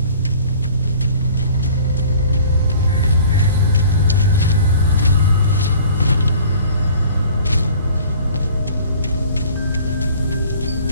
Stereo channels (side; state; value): both; inverted; correlation -0.49